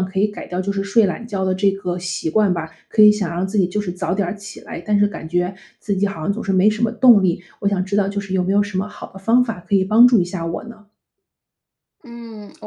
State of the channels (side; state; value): both; identical; correlation 1.00